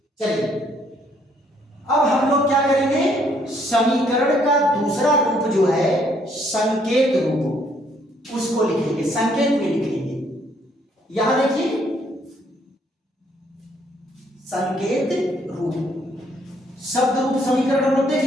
चलिए अब हम लोग क्या करेंगे, समीकरण का दूसरा रूप जो है संकेत रूप, उसको लिखेंगे, संकेत में लिखेंगे। यहां देखिए संकेत रूप। शब्द रूप समीकरण हम लोग देख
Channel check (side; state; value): both; normal; correlation 0.67